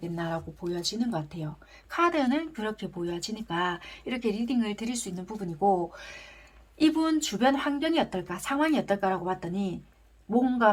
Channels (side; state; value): both; identical; correlation 1.00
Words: 보여지는 것 같아요. 카드는 그렇게 보여지니까 이렇게 리딩을 드릴 수 있는 부분이고 이분 주변 환경이 어떨까, 상황이 어떨까라고 봤더니